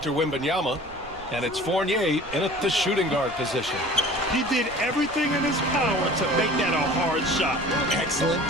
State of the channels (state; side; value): noise; right; rumble, 20 dB below the sound